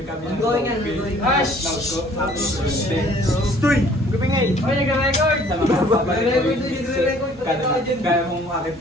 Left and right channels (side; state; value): both; normal; correlation 0.55